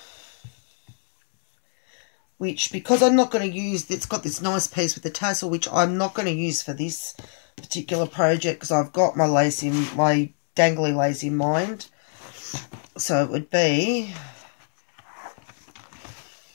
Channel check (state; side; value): silent; right; 63 dB below the other